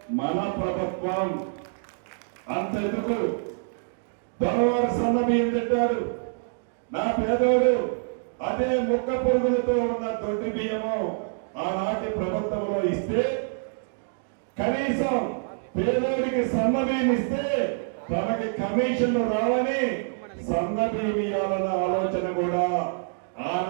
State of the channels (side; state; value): left; silent; digital silence